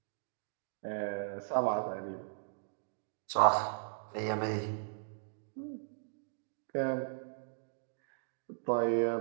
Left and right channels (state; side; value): silent; left; digital silence